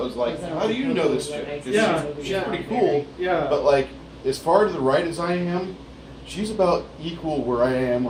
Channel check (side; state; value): both; identical; correlation 1.00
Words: like, how do you know this chick? 'Cause Yeah, she's yeah. pretty cool, Yeah. but like as far to the right as I am, she's about equal where I am